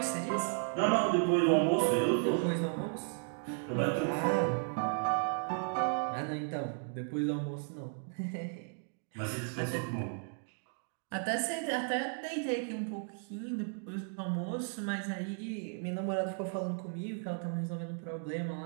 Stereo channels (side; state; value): left; silent; 55 dB below the other